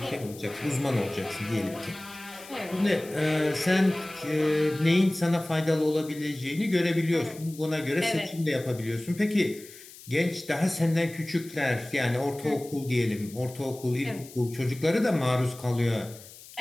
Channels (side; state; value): left; noise; hiss, 18 dB below the sound